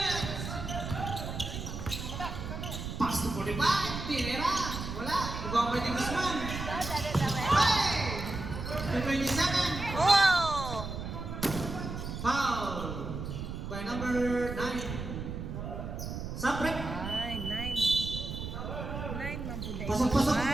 Pass to 45. Tinira. Wala. Ibang may Guzman. Hey! To 27. Oh! Foul. By number 9. Sapret. Ay, 9 man po dahil. Pasok, pasok.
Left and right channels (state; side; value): noise; right; rumble, 6 dB below the sound